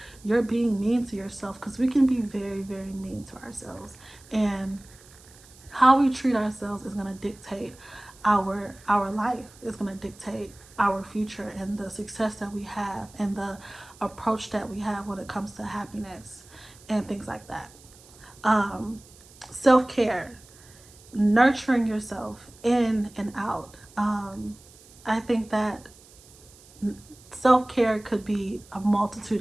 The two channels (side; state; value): right; noise; hiss, 24 dB below the sound